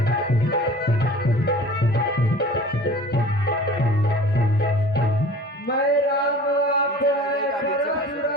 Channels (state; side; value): normal; both; correlation 0.43